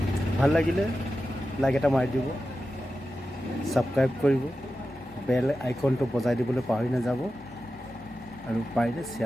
ভাল লাগিলে লাইক এটা মাৰি দিব, ছাবস্ক্ৰাইব কৰিব, বেল আইকনটো বজাই দিবলৈ পাহৰি নাযাব আৰু পাৰিলে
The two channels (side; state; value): both; normal; correlation 0.92